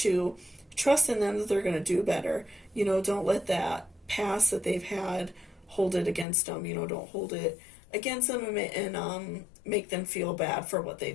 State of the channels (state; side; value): drops out; right; at 6.2 s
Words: trust in them that they're going to do better. You know, don't let that past that they've had hold it against them. You know, don't hold it against them and make them feel bad for what